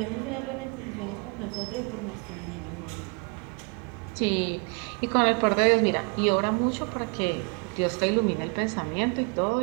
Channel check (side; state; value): left; quieter; 33.5 dB